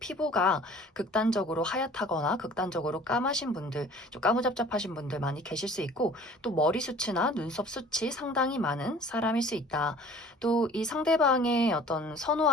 극단적으로 하얗다거나 극단적으로 까마신 분들, 좀 까무잡잡하신 분들 많이 계실 수 있고 또 머리숱이나 눈썹 숱이 상당히 많은 사람일 수 있다. 또 이 상대방의 어떤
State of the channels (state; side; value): normal; both; correlation 0.48